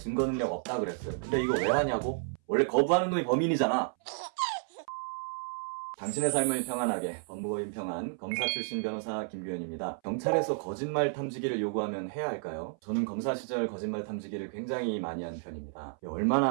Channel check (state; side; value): silent; left; 57 dB below the other